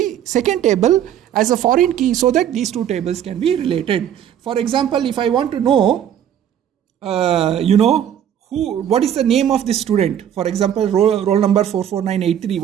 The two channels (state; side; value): quieter; left; 9.9 dB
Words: second table as a foreign key so that these two tables can be related. For example, if I want to know, what is the name of this student? For example, roll number 44983,